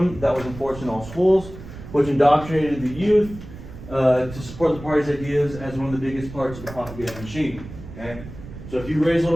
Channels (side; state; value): right; noise; rumble, 14 dB below the sound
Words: that was enforced in all schools, which indoctrinated the youth to support the party's ideas as one of the biggest parts of the propaganda machine. Okay. So if you raise